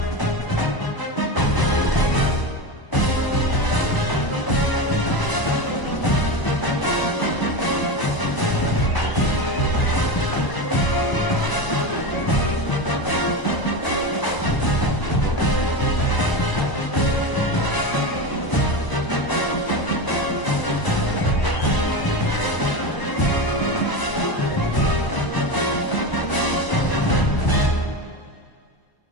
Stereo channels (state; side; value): late; right; 1.0 ms